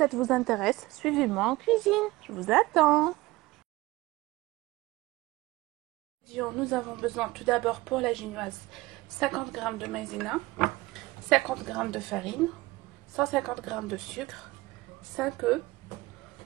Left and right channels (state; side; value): quieter; left; 20.0 dB